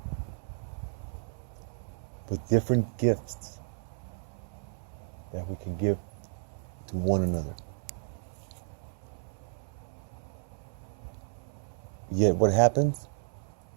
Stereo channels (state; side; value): silent; left; 56 dB below the other